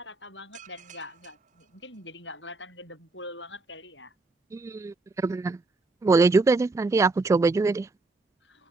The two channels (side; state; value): left; quieter; 3.4 dB